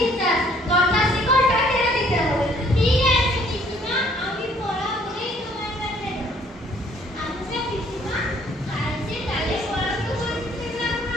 দরজার শিকলটা টেনে দিতে হবে। ঠিক আছে পিসিমা, আমি পড়া বলেই তোমার কাছে। আচ্ছা পিসিমা, কাল যে কালে পড়াশোনা করছিলাম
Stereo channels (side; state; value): both; normal; correlation 0.60